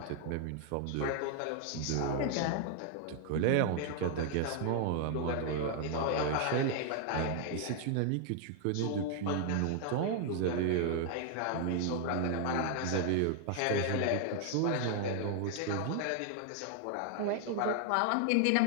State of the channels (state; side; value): different; both; correlation 0.00